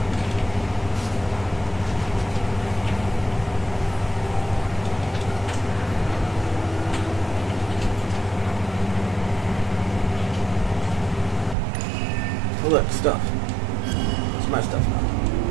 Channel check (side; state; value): left; drops out; at 11.6 s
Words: Oh, look, stuff. It's my stuff now.